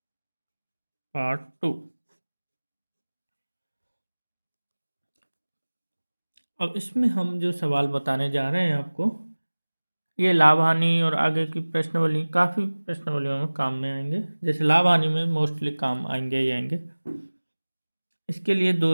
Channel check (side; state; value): both; inverted; correlation -1.00